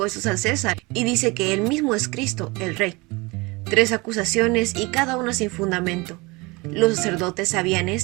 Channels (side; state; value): left; quieter; 25.2 dB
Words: al César y dice que él mismo es Cristo, el Rey. 3 acusaciones y cada una sin fundamento. Los sacerdotes sabían